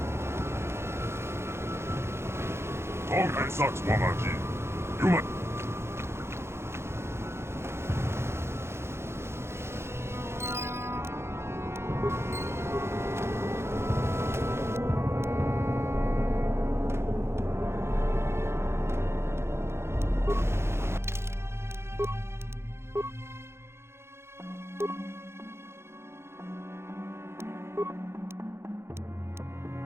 Tonghai Saks Wamaji. Human.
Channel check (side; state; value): left; late; 0.12 ms